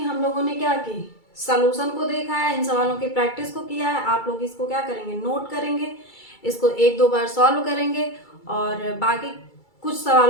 हम लोगों ने क्या की, सॉल्यूशन को देखा है, इन सवालों की प्रैक्टिस को किया है। आप लोग इसको क्या करेंगे, नोट करेंगे, इसको 1-2 बार सॉल्व करेंगे और बाकी कुछ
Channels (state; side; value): late; right; 2.3 ms